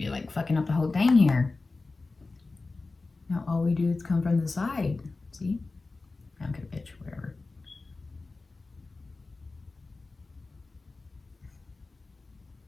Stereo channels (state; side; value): quieter; right; 3.6 dB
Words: like fucking up the whole thing here. Now all we do is come from the side. See? Okay, bitch, whatever.